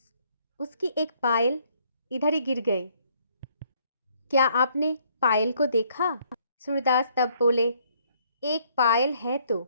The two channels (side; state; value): both; inverted; correlation -0.66